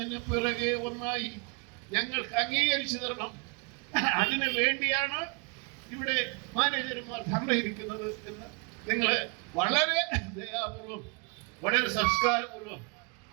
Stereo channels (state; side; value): quieter; left; 33.8 dB